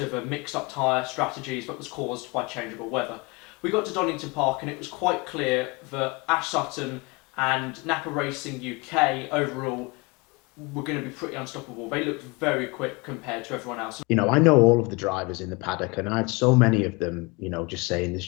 the mixed up tyre strategies that was caused by changeable weather. We got to Donington Park and it was quite clear that Ash Sutton and Napa Racing UK overall were going to be pretty unstoppable. They looked very quick compared to everyone else. You know, I know all of the drivers in the paddock, and I had so many of them, you know, just saying there's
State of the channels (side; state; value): right; quieter; 27.3 dB